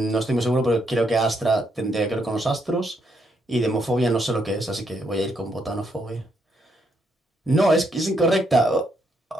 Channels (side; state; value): both; normal; correlation 0.76